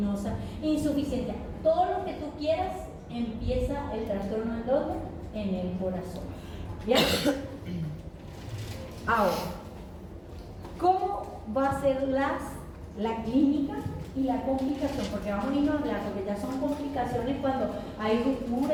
insuficiencia, todo lo que tú quieras, empieza el trastorno en dónde? En el corazón. ¿Ya? Ahora, ¿cómo va a ser la clínica y la complicación? Porque vamos a irnos a hablar, porque ya son complicaciones cuando hay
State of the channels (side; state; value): both; identical; correlation 1.00